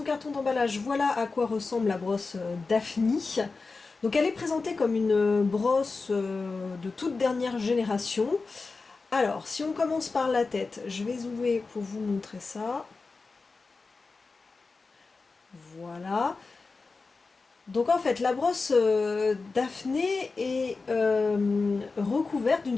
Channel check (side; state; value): right; quieter; 4.1 dB